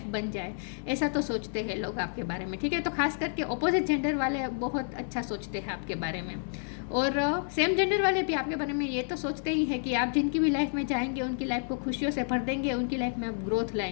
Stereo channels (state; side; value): silent; right; digital silence